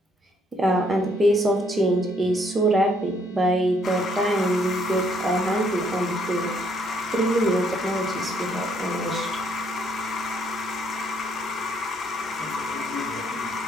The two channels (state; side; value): normal; both; correlation 0.68